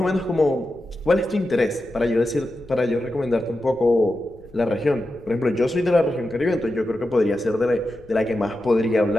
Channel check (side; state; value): left; noise; rumble, 25 dB below the sound